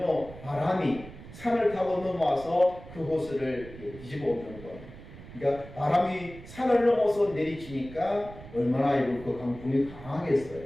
바람이 산을 타고 넘어와서 그 호수를 뒤집어 엎는 거. 그러니까 바람이 산을 넘어서 내리치니까 얼마나 그 강풍이 강하겠어요.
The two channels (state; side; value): noise; right; rumble, 16 dB below the sound